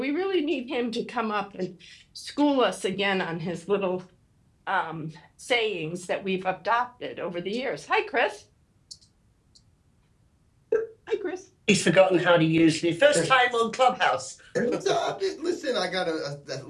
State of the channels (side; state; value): both; identical; correlation 1.00